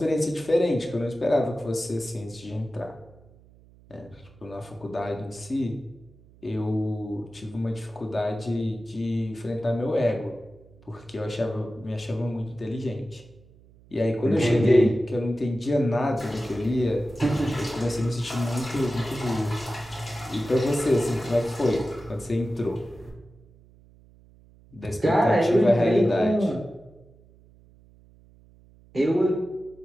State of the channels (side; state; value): right; noise; hum, 26 dB below the sound